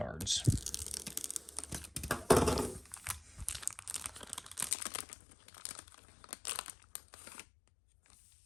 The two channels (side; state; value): right; drops out; at 4.8 s